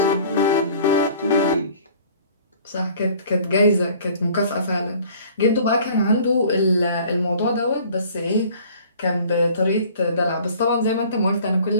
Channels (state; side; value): inverted; both; correlation -0.51